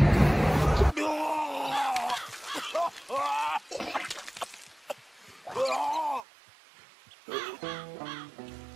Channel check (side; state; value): left; drops out; at 6.2 s